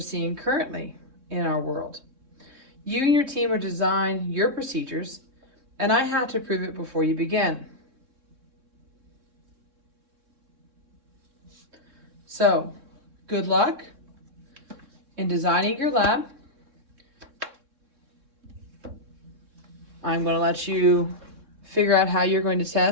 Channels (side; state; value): left; late; 3.6 ms